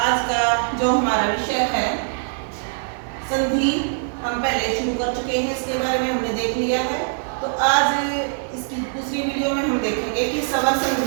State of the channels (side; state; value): left; silent; 55 dB below the other